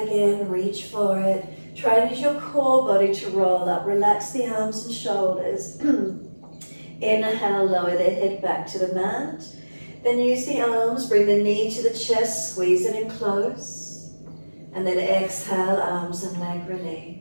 in, reach for it. Try to use your core body to roll up. Relax the arms and shoulders. Inhale, lower the head back to the mat. Then use the arms, bring the knee to the chest, squeeze it in close. And then exhale, arms and leg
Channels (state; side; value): inverted; both; correlation -1.00